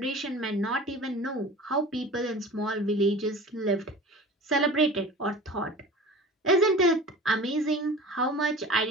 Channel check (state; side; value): normal; both; correlation 0.39